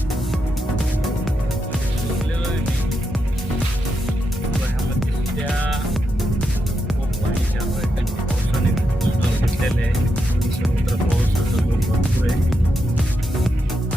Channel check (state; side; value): normal; both; correlation 0.84